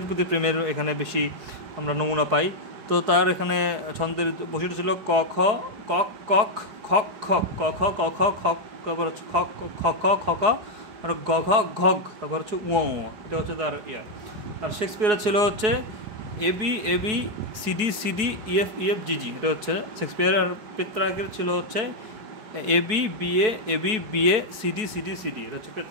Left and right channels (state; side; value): late; left; 4.6 ms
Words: প্রতি প্রেমের এখানে বেশি আমরা নমুনা পাই। তো তার এখানে ছন্দের বৈশিষ্ট্য ছিল ক খ কক কক খক খক, ক খ ক খ খক, তারপর হচ্ছে খ খ খ খ খ আর গ ঘ ঘগ, তারপর হচ্ছে উ, এটা হচ্ছে তার ইয়া। আর শেক্সপিয়ারের ছিল হচ্ছে এবি সিডি ইএফ জিজি, এটা হচ্ছে শেক্সপিয়ার। আর পেত্রাকের ছিল হচ্ছে এবি বিএ সিডি, এটা হচ্ছে